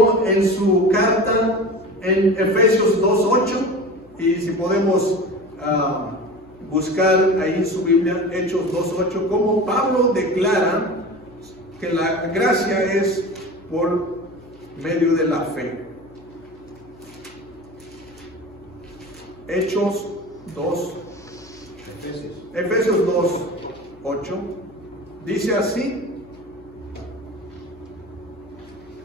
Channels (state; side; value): noise; left; hum, 25 dB below the sound